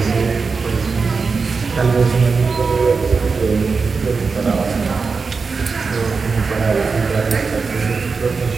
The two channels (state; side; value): quieter; left; 4.8 dB